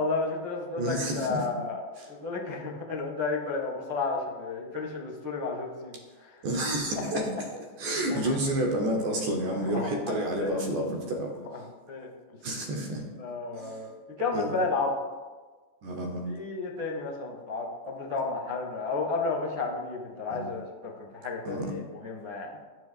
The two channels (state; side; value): late; left; 14 ms